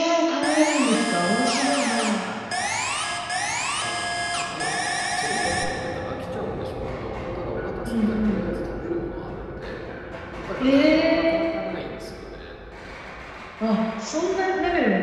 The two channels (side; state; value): both; identical; correlation 1.00